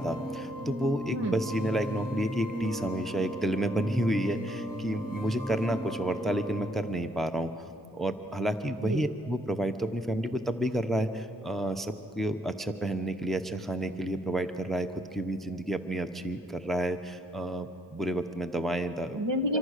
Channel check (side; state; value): both; normal; correlation 0.70